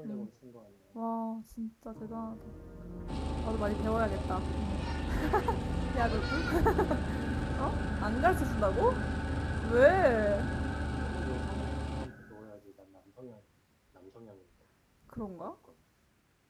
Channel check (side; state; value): both; identical; correlation 1.00